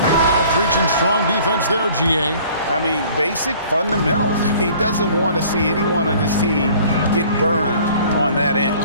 Now preaching strong defense there, GA. I mean, basic fundamentals. He doesn't want to see anyone on his team get burned on that end.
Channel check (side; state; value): both; inverted; correlation -0.52